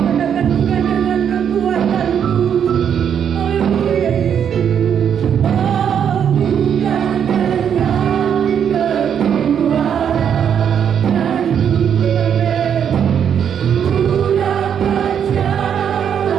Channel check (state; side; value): quieter; left; 8.3 dB